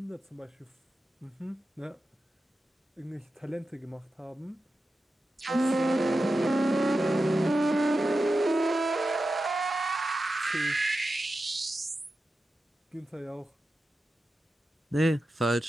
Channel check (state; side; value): normal; both; correlation 0.92